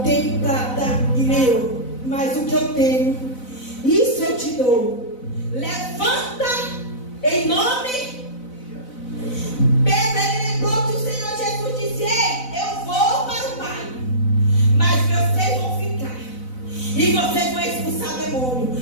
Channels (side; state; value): right; late; 4.0 ms